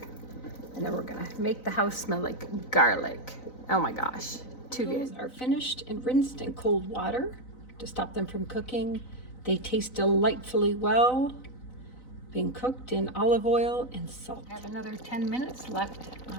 And then we're gonna make the house smell like garlic. Oh my gosh, too good. Those are finished and rinsed in cold water to stop them from cooking. They taste delightfully well, being cooked in olive oil and salt. I have another 10 minutes left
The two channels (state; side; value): late; right; 4.0 ms